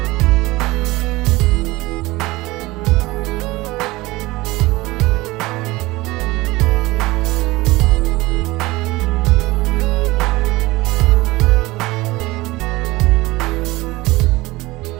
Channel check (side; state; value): left; quieter; 20.4 dB